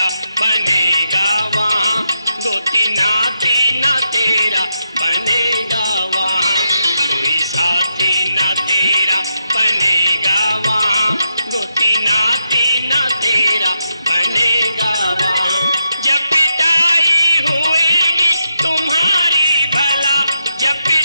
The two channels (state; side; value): inverted; both; correlation -0.83